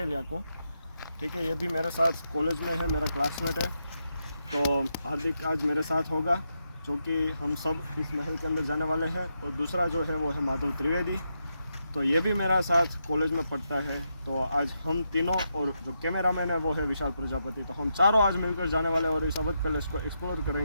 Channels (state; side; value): inverted; both; correlation -0.83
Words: को। ठीक है, ये भी मेरे साथ कॉलेज में है, मेरा क्लासमेट है। तो हार्दिक आज मेरे साथ होगा, जो कि हम सब इस महल के अंदर जाने वाले हैं। और दूसरा जो है वो है माधव त्रिवेदी, तो ये भी मेरा साथ कॉलेज में पढ़ता है। तो आज हम तीनों, और जो कैमरामैन है वो है विशाल प्रजापति, तो हम चारों आज मिलकर जाने वाले हैं और इस अवध पैलेस को एक्सप्लोर